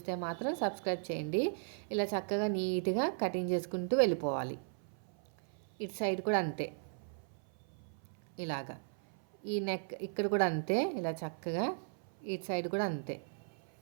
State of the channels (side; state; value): left; silent; 54 dB below the other